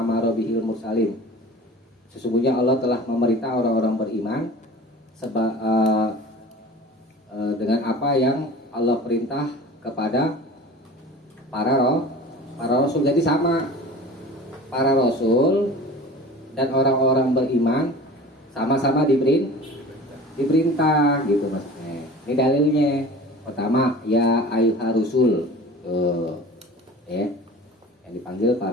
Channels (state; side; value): normal; both; correlation 0.40